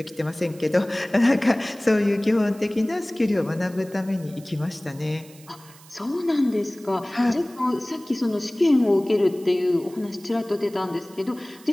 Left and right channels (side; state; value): right; noise; hiss, 23 dB below the sound